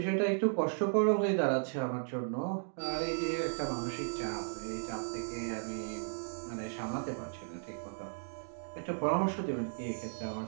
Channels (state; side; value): silent; left; digital silence